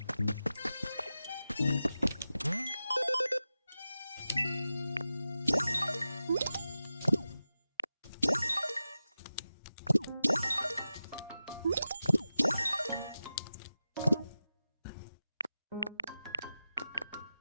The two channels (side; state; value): both; inverted; correlation -0.93